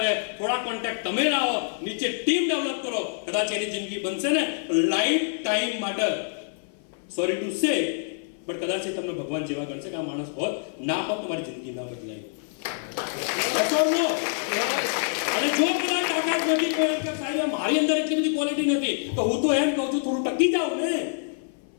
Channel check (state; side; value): silent; right; 56 dB below the other